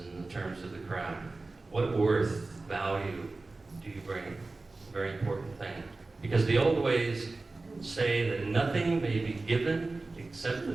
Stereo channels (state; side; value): quieter; left; 3.4 dB